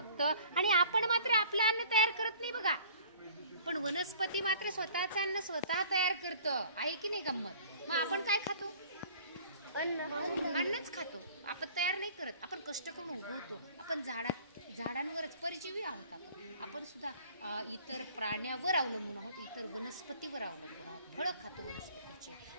आणि आपण मात्र आपलं अन्न तयार करत नाही बघा. पण वनस्पती मात्र स्वतःचं अन्न स्वतः तयार करतं, आहे की नाही गंमत? मग आपण काय खातो? अन्नच खातो. आपण तयार नाही करत, आपण कष्ट करून उगवतो. आपण झाडांवरच परजीवी आहोत. आपण सुद्धा इतर प्राण्यावर अवलंबून आहोत, इतर वनस्पतीवर अवलंबून आहोत. फळं खातो वनस्पतीचे,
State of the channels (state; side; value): inverted; both; correlation -0.50